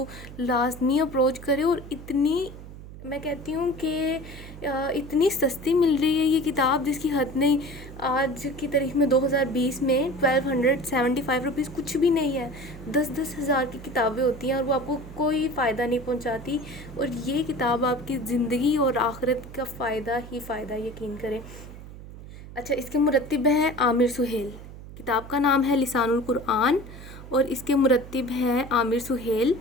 लाजमी अप्रोच करें। और इतनी मैं कहती हूँ कि इतनी सस्ती मिल रही है ये किताब जिसकी हद नहीं। आज की तारीख में 2020 में 1275 रुपीज़ कुछ भी नहीं है। 10-10 हज़ार की किताबें होती हैं और वो आपको कोई फ़ायदा नहीं पहुंचाती। और ये किताब आपकी ज़िंदगी और आखिरत का फ़ायदा ही फ़ायदा, यकीन करें। अच्छा, इसके मुरत्तिब हैं आमिर सुहेल। किताब का नाम है लिसानुल कुरआन और इसके मुरत्तिब हैं आमिर सुहेल।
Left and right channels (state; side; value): noise; right; hum, 14 dB below the sound